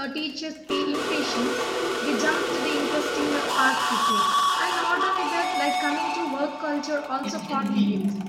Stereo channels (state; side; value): identical; both; correlation 1.00